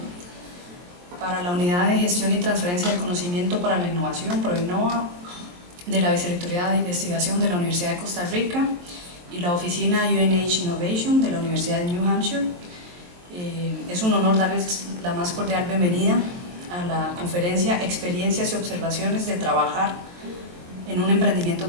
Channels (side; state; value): left; late; 23 ms